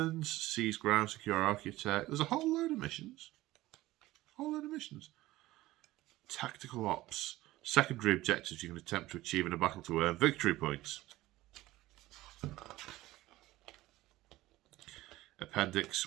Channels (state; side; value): quieter; left; 17.3 dB